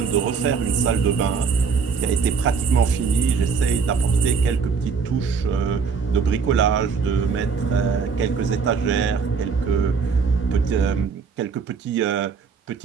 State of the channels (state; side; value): quieter; left; 5.6 dB